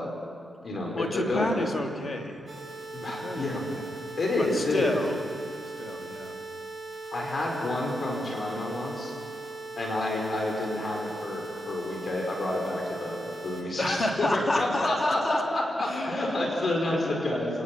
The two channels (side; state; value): both; normal; correlation 0.85